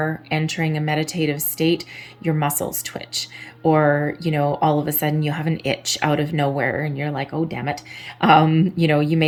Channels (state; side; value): identical; both; correlation 1.00